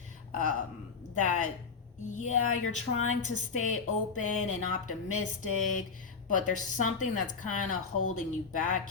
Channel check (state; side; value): quieter; right; 5.2 dB